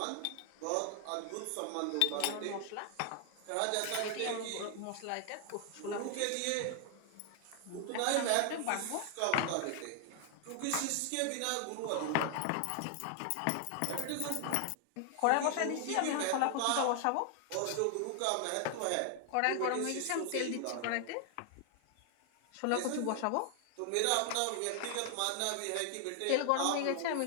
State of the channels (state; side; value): different; both; correlation 0.00